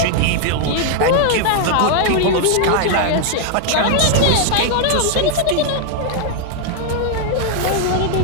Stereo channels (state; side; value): different; both; correlation 0.00